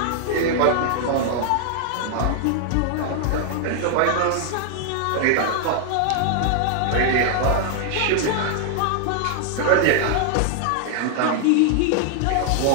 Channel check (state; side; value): different; both; correlation 0.00